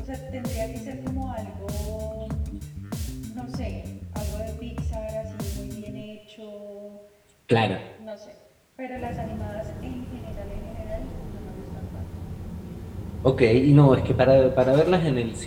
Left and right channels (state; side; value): identical; both; correlation 1.00